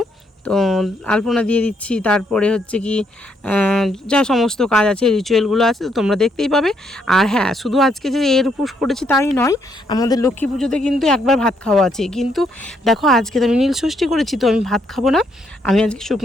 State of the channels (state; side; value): normal; both; correlation 0.73